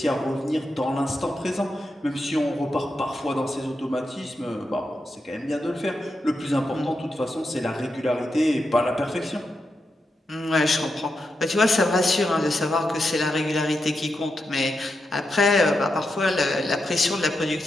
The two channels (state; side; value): normal; both; correlation 0.86